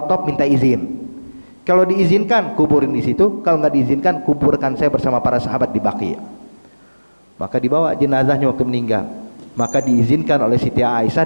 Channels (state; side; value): inverted; both; correlation -1.00